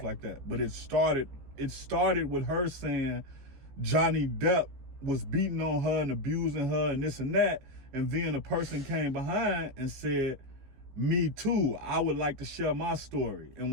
like that. But it started with her saying Johnny Depp was beating on her and abusing her and this and that. And then a person came behind and said, "Me too. I would like to share my story." And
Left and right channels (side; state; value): left; late; 15 ms